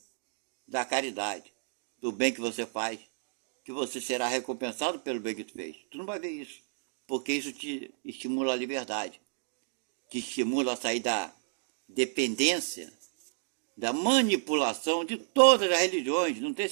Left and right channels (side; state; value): left; silent; digital silence